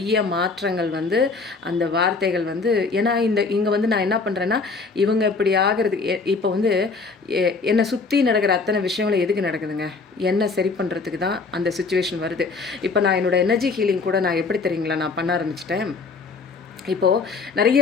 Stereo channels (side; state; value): right; quieter; 4.3 dB